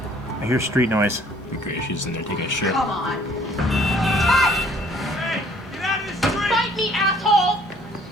I hear street noise. Be great. She's in there taking a shit. Come on. Hey! Get out of the street! Fight me, asshole!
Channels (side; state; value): both; normal; correlation 0.59